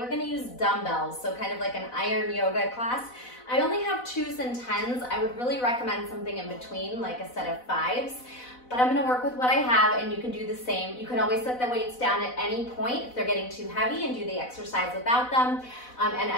going to use dumbbells, so kind of like an iron yoga class. I only have 2s and 10s. I would really recommend something in between, like a set of 5s. But I'm going to work with what I have, and you can do the same. You can always set the weights down at any point if they're getting too heavy and do the exercise without them. And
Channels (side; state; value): right; late; 4.0 ms